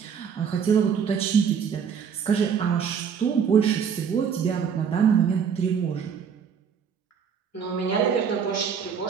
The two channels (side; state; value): left; quieter; 7.1 dB